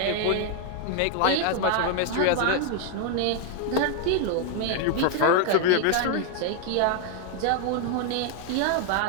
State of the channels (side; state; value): both; different; correlation 0.01